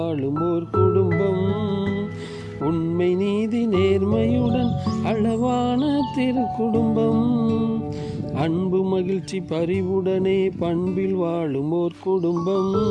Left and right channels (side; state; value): both; identical; correlation 1.00